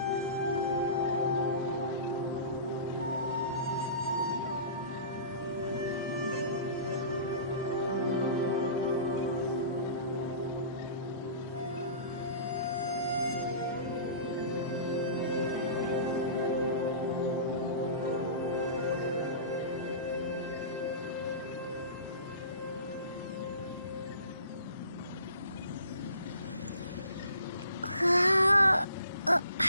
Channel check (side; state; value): both; inverted; correlation -0.41